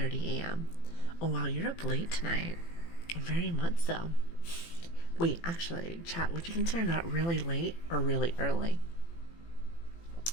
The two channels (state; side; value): late; right; 18 ms